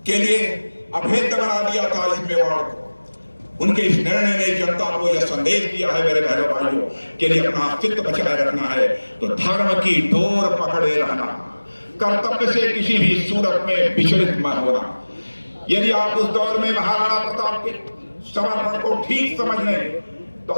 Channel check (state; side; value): inverted; both; correlation -1.00